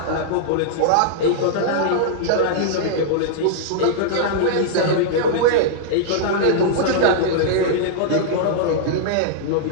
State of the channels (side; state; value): both; different; correlation -0.02